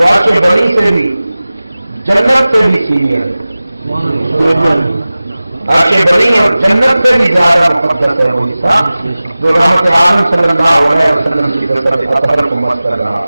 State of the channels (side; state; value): both; inverted; correlation -0.97